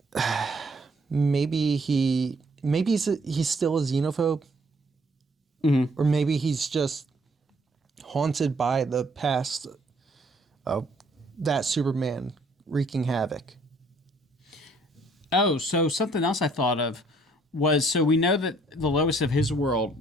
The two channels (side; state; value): both; normal; correlation 0.63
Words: maybe he's still a xenophobe, or maybe he's just haunted by the past of that Superman wreaking havoc. Oh, so something else I thought of was, so we know that the Lois of his world,